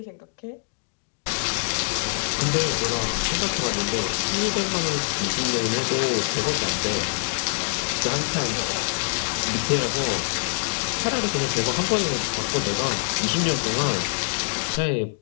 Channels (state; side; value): silent; right; digital silence